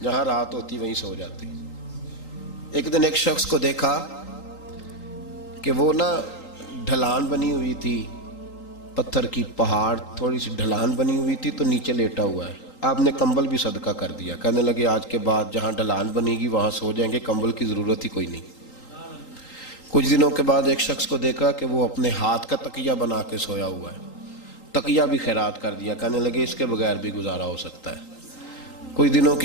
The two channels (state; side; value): late; right; 3.8 ms